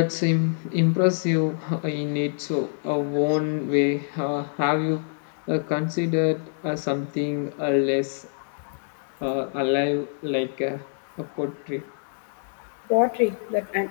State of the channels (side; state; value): right; silent; digital silence